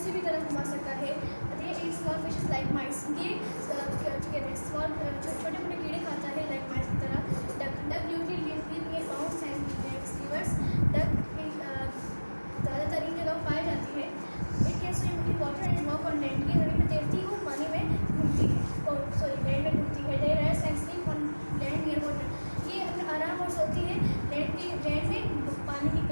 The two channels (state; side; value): inverted; both; correlation -1.00